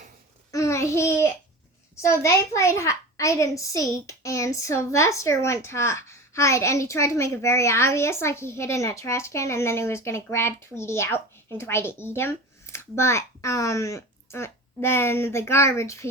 they played hide and seek, and Sylvester went to hide, and he tried to make it very obvious, like he hid in a trash can, and then he was going to grab Tweety out and try to eat him. But then the garbage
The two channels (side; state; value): both; normal; correlation 0.32